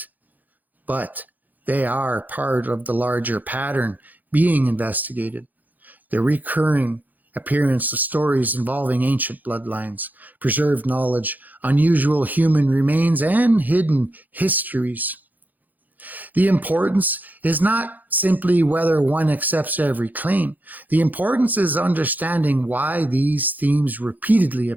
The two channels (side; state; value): left; late; 0.083 ms